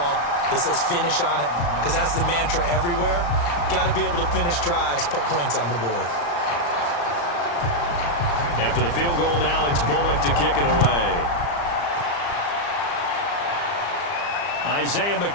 that says finish on it? Because that's the mantra everywhere. Got to be able to finish drives, put points on the board. After the field goal now, it's Bullock to kick it away. Isaiah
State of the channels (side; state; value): right; late; 35 ms